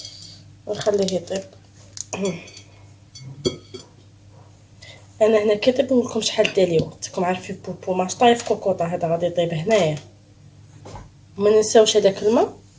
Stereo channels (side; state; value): both; identical; correlation 1.00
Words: ونخليه يطيب. انا هنا كي طيب نقول لكم شحال دالي وقت. راكم عارفين بوبو ماش طايف كوكوطه، هذا غادي يطيب هنايا. وما ننساوش هذاك الماء.